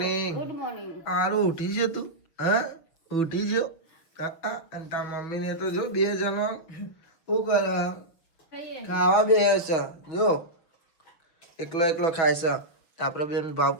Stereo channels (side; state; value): right; late; 6.1 ms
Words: હારું ઉઠી છે તું હા ઉઠી જો અને તાર મમ્મી ને તો જો બે જણો શું કરે ખાવા બે છે જો એકલો ખાય છે આપડે બેન ભાવ